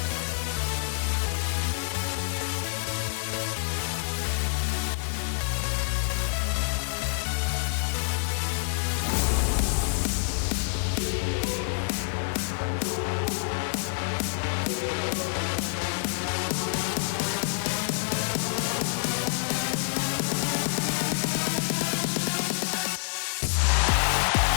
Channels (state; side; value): silent; right; digital silence